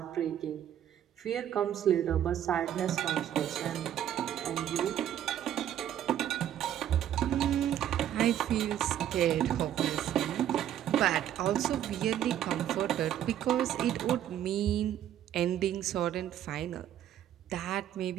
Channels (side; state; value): left; quieter; 10.9 dB